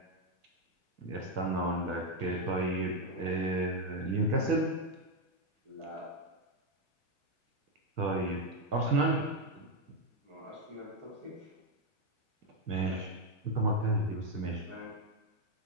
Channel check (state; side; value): late; left; 1.6 ms